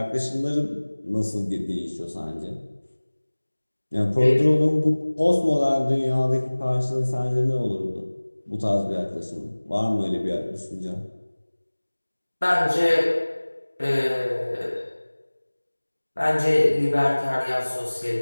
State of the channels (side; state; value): both; inverted; correlation -1.00